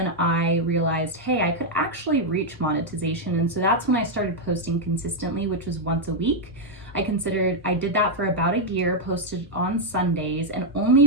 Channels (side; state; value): both; normal; correlation -0.01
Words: I realized, hey, I could actually reach monetization. And so that's when I started posting consistently, which was once a week. I did that for about a year, posted on Sundays, and